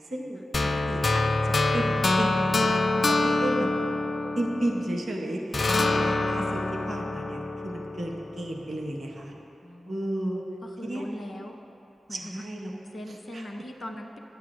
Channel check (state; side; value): normal; both; correlation 0.94